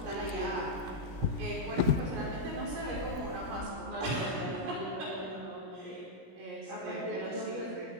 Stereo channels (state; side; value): late; left; 17 ms